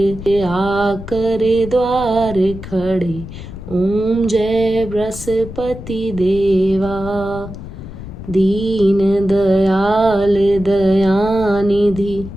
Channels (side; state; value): left; noise; rumble, 12 dB below the sound